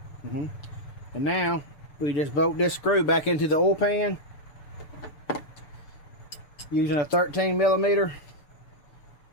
And now we just bolt this screw back into the oil pan using a 13mm,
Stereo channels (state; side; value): late; right; 7.0 ms